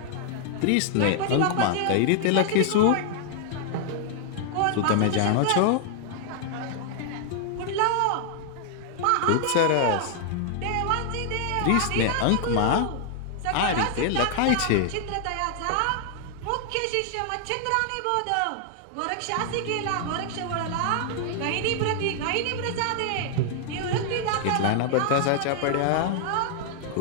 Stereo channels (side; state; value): both; different; correlation 0.00